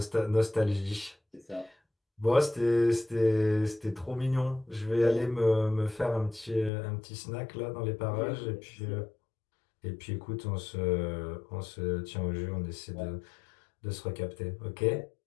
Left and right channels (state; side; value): drops out; right; at 6.7 s